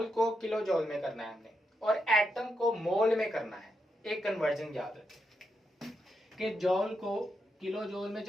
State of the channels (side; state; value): both; normal; correlation 0.83